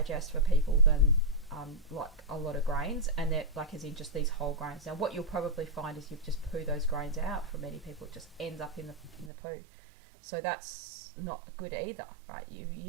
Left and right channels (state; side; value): drops out; left; at 9.3 s